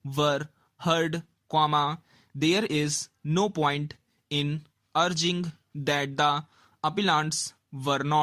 were heard, there is no point in urging that the appellants were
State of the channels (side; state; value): both; identical; correlation 1.00